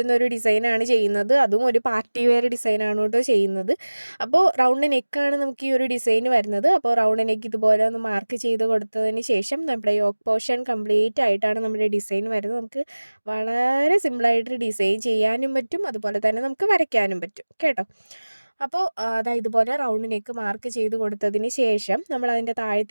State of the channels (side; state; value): both; inverted; correlation -1.00